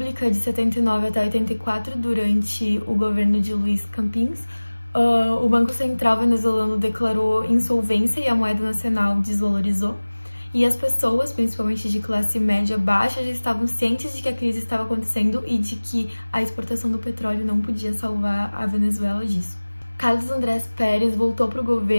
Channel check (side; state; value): both; inverted; correlation -1.00